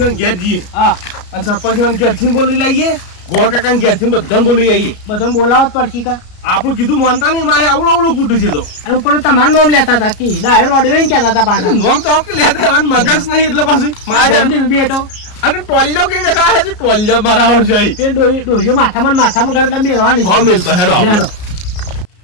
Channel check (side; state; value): right; late; 33 ms